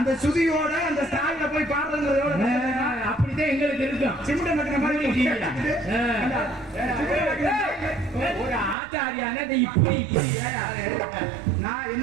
சுதியோட அந்த ஸ்டாயில போய் பாடுறதுங்கிறது எவ்வளவு அப்படிதான் எங்களுக்கு இருக்கும். சிமெண்ட் மட்டின மாதிரி ஒரு ஆச்சாரியான இப்படி நான்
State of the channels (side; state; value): left; drops out; at 8.8 s